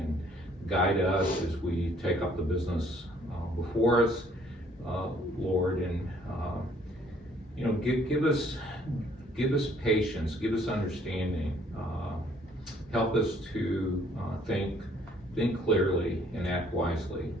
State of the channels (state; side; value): normal; both; correlation 0.61